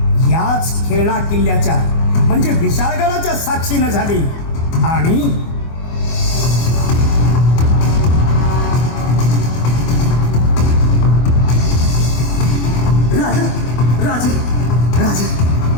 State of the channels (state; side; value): late; right; 24 ms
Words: याच खेळणा किल्ल्याच्या म्हणजे विशाळगडाच्या साक्षीनं झाली. आणि राजा राजा राजा